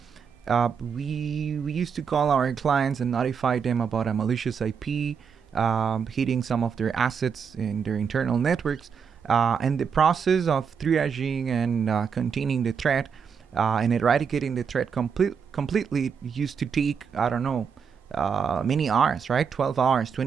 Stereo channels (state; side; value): quieter; left; 6.6 dB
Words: we used to call our clients and notify them about a malicious IP hitting some of their assets in their internal networks. And the process of triaging and containing the threat and eradicating the threat completely used to take, I don't know, many hours, right? 12 hours,